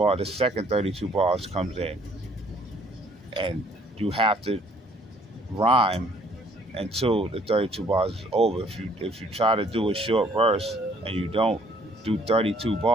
second 32 bars comes in, and you have to rhyme until the 32 bars is over. If you try to do a short verse and you don't do 32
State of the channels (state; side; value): normal; both; correlation 0.61